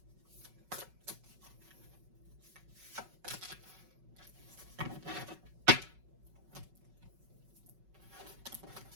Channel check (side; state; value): left; late; 5.4 ms